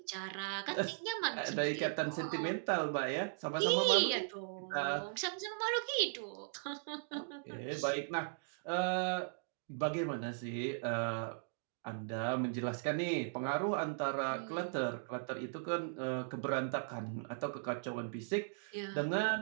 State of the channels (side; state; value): left; silent; digital silence